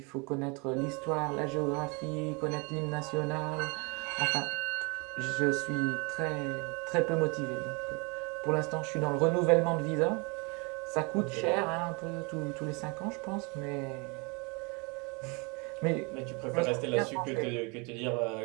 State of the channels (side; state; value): left; quieter; 30.7 dB